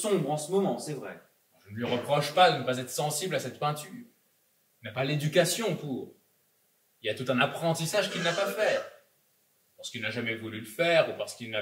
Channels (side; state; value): both; identical; correlation 1.00